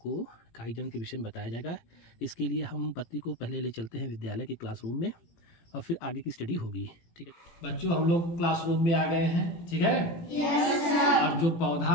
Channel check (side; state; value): right; late; 18 ms